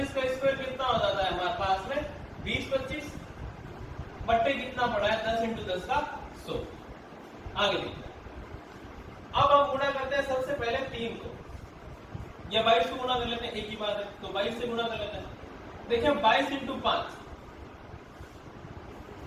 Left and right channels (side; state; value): both; identical; correlation 1.00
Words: का स्क्वायर कितना हो जाता है हमारे पास में 20 25 बट्टे कितना पड़ा है 10 इंटू 10 का 100। आगे देखते हैं, अब हम गुणा करते हैं सबसे पहले 3 को, या 22 को गुणा कर लेते हैं, एक ही बात है, तो 22 से गुणा कर लेते हैं। देखिए 22 इंटू 5